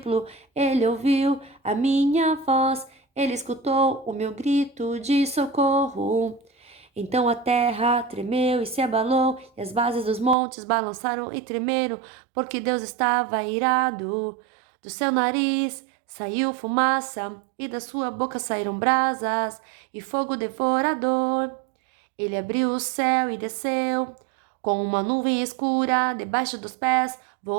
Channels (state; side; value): drops out; left; at 10.4 s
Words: Ele ouviu a minha voz, Ele escutou o meu grito de socorro. Então a terra tremeu e se abalou, e as bases dos montes balançaram e tremeram, porque Deus estava irado. Do seu nariz saiu fumaça, e da sua boca saíram brasas e fogo devorador. Ele abriu o céu e desceu, com uma nuvem escura debaixo dos pés,